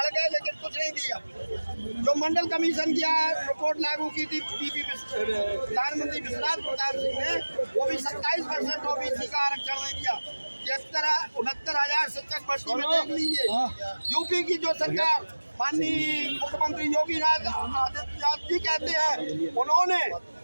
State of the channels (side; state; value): both; inverted; correlation -1.00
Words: गए, लेकिन कुछ नहीं दिया। जो मंडल कमीशन की रिपोर्ट लागू की थी प्रधानमंत्री विश्वनाथ प्रताप सिंह ने, वो भी 27% OBC का आरक्षण नहीं दिया। 69,000 शिक्षक भर्ती में देख लीजिए। यूपी की जो सरकार माननीय मुख्यमंत्री योगी आदित्यनाथ जी कहते हैं, उन्होंने